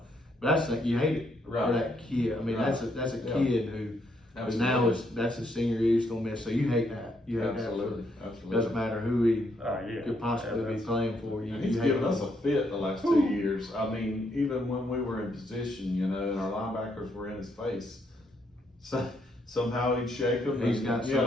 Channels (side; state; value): both; normal; correlation 0.75